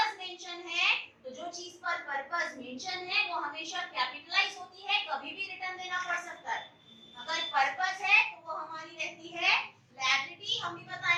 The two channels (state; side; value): identical; both; correlation 1.00